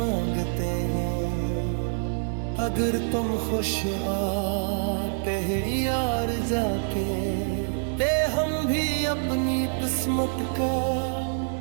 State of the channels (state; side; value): silent; left; digital silence